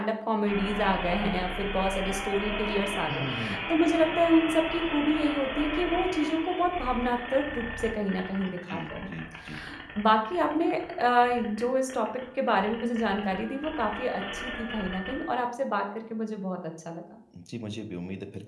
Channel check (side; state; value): both; identical; correlation 1.00